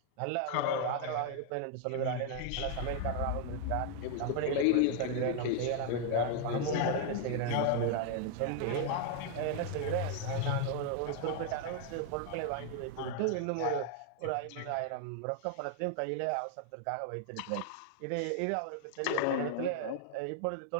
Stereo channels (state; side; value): different; both; correlation 0.00